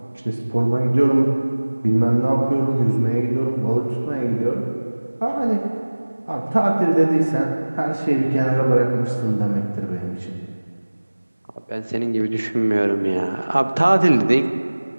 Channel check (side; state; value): both; inverted; correlation -1.00